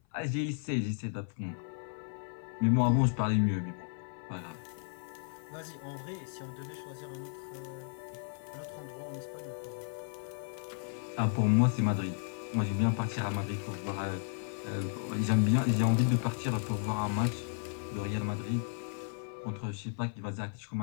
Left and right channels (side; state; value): right; silent; 55 dB below the other